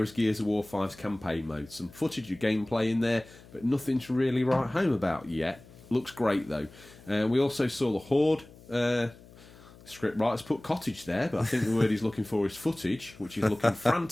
as Gears of War 5's campaign mode. Some footage of gameplay in there, but nothing to really write home about yet. Looks great, though. We also saw the Horde. Script writers put cottage there, but I think the word he's looking for is footage, which is looking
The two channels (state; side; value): noise; left; hum, 22 dB below the sound